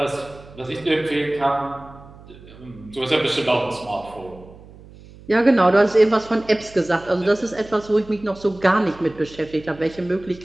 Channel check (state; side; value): noise; right; hum, 21 dB below the sound